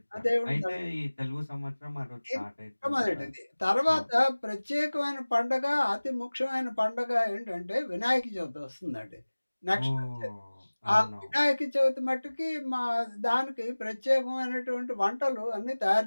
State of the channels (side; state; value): both; inverted; correlation -1.00